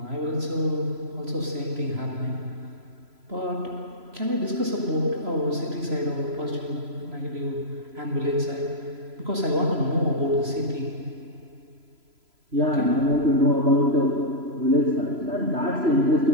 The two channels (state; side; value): late; left; 3.0 ms